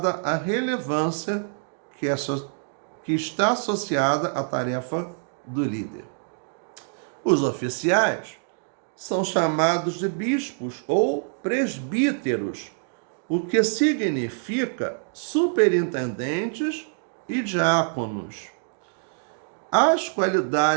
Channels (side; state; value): left; silent; 61 dB below the other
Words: a relevância que está associada à tarefa do líder. Os oficiais são chamados de bispos ou presbíteros, o que significa superintendentes e diáconos. As